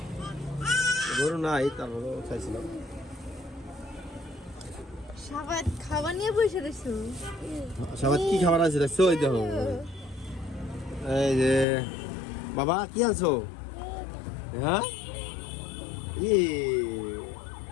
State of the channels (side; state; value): right; drops out; at 11.7 s